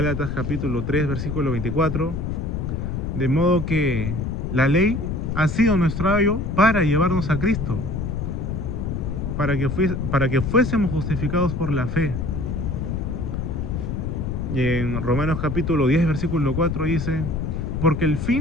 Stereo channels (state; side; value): noise; left; rumble, 3 dB below the sound